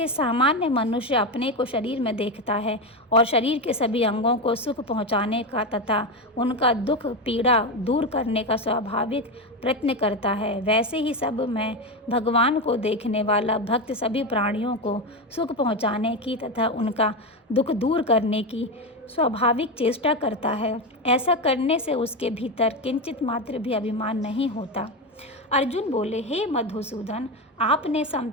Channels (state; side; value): normal; both; correlation 0.14